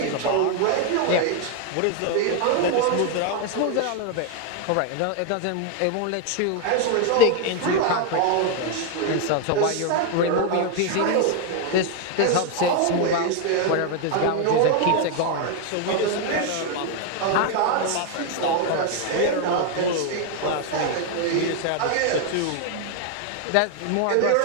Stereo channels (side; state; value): both; different; correlation 0.01